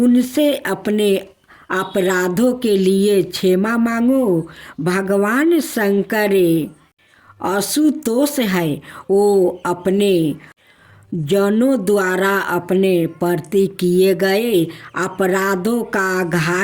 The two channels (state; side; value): identical; both; correlation 1.00